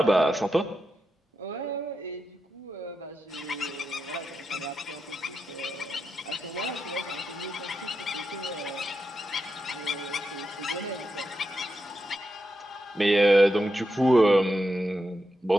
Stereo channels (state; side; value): normal; both; correlation 0.87